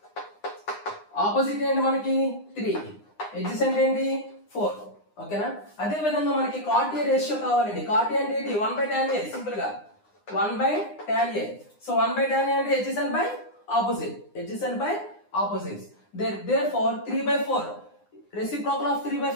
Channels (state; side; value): late; right; 9.8 ms